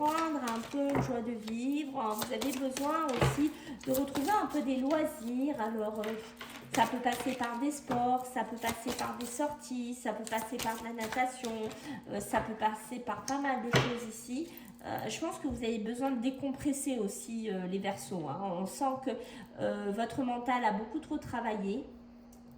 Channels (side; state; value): both; identical; correlation 1.00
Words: un peu joie de vivre. Vous avez besoin aussi de retrouver un peu des loisirs. Alors, ça peut passer par des sports, ça peut passer par des sorties, ça peut passer par de la natation, ça peut passer par pas mal de choses ici. Je pense que vous avez besoin de décompresser aussi les Verseaux. Hein. On sent que votre mental a beaucoup trop travaillé.